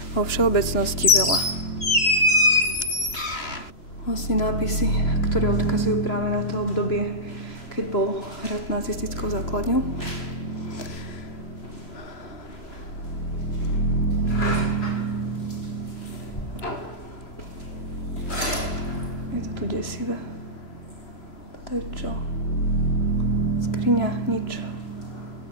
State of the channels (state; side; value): late; right; 3.0 ms